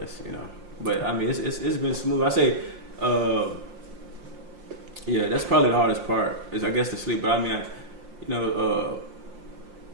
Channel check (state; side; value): late; left; 5.7 ms